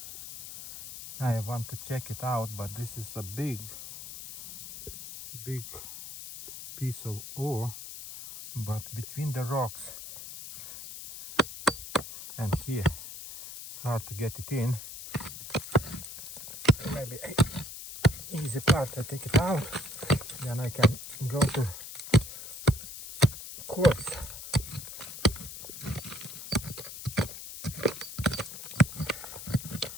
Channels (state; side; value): noise; left; hiss, 11 dB below the sound